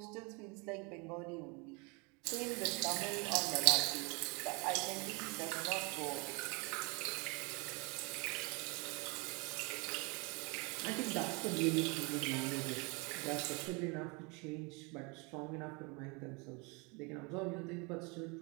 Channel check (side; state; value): left; quieter; 30.1 dB